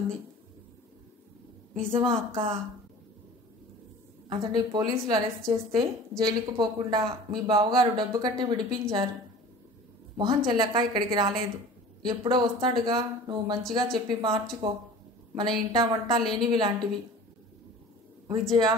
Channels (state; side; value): normal; both; correlation 0.42